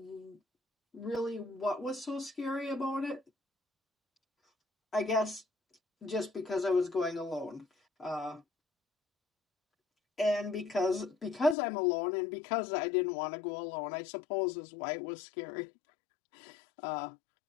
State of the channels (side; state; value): right; drops out; at 11.6 s